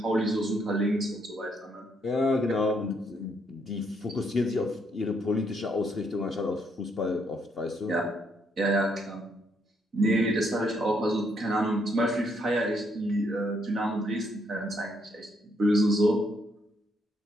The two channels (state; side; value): normal; both; correlation 0.73